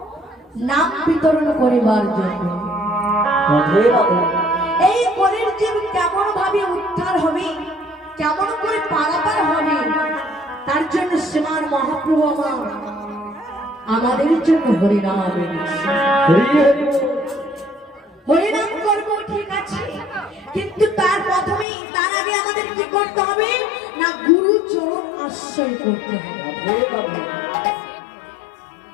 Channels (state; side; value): drops out; right; at 21.7 s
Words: নাম বিতরণ করিবার জন্য। এই কলির জীব কেমন ভাবে উদ্ধার হবে, কেমন করে পারাপার হবে, তার জন্য শ্রীমান মহাপ্রভু আমার আমাদের জন্য হরিনাম হরিনাম করব, ঠিক আছে, কিন্তু তার প্রথমে তার আগে আমাদের কি করতে হবে না, গুরু চরণ আশ্রয় করতে হবে।